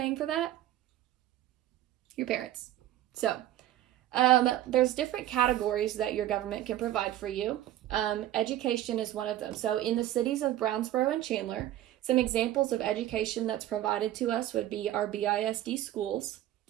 for that? Your parents. So there's different categories that your government can provide for you. Education is one of them. So in the cities of Brownsboro and Chandler, some examples of education that's provided to us would be our BISD schools,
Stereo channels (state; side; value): quieter; left; 13.4 dB